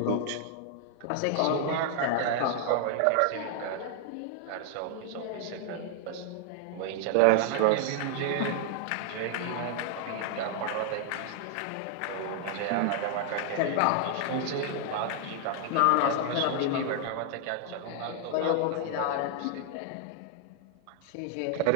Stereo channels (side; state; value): both; different; correlation 0.00